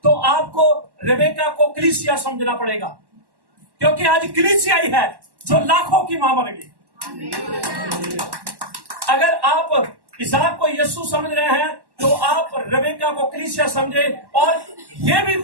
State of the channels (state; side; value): late; left; 1.1 ms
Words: तो आपको रेबेका को कलीसिया समझना पड़ेगा, क्योंकि आज कलीसिया ही है जो लाखों की मां बनेगी। अगर आप इसाक को यीशु समझ रहे हैं तो आप रेबेका को कलीसिया समझे। और ये भी